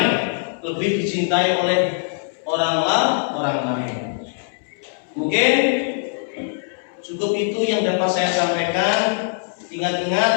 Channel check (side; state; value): right; silent; 65 dB below the other